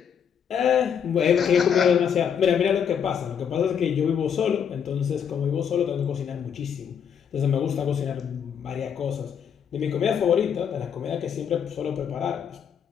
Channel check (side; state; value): right; quieter; 7.8 dB